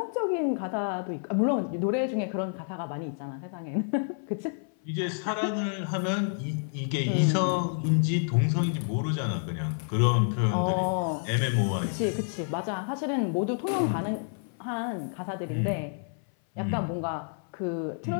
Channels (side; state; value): right; silent; 59 dB below the other